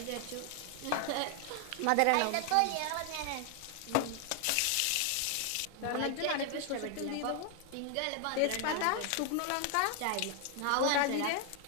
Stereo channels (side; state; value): both; different; correlation 0.00